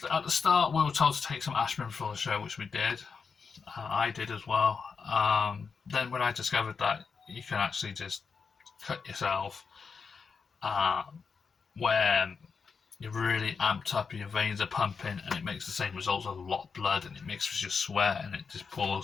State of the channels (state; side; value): quieter; right; 5.5 dB